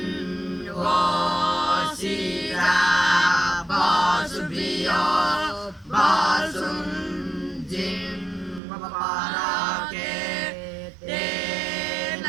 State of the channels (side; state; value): left; drops out; at 8.6 s